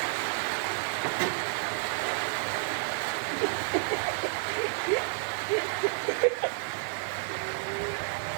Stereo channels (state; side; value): silent; left; digital silence